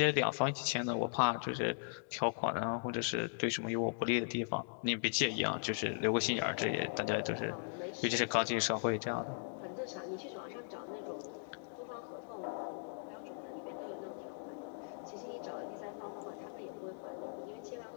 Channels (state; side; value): silent; right; digital silence